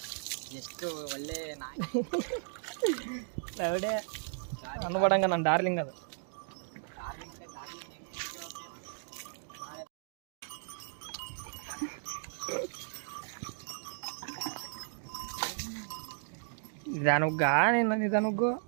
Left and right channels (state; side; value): silent; left; digital silence